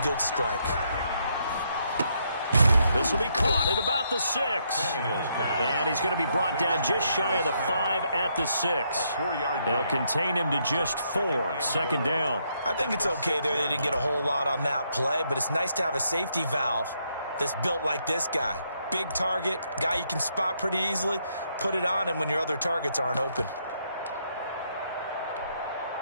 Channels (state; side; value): inverted; both; correlation -0.75